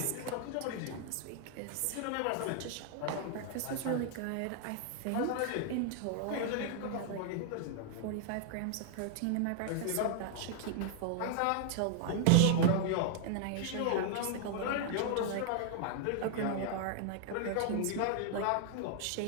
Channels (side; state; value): both; different; correlation 0.00